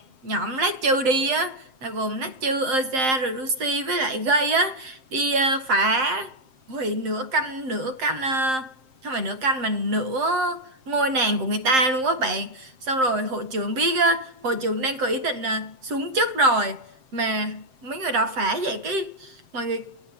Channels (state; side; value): late; left; 7.7 ms